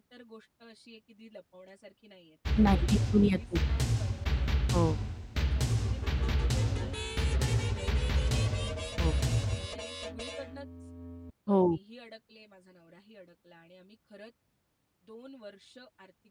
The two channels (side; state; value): both; identical; correlation 1.00